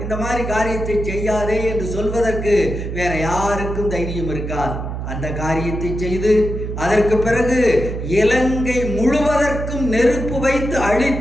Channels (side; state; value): right; noise; hum, 5 dB below the sound